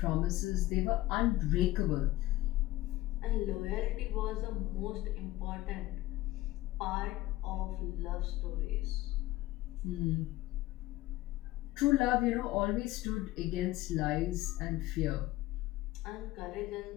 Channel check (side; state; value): right; quieter; 17.2 dB